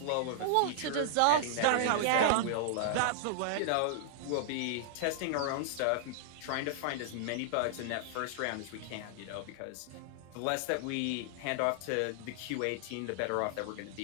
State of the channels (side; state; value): both; different; correlation -0.01